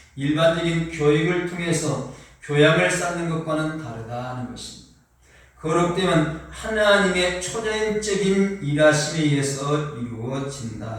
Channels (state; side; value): identical; both; correlation 1.00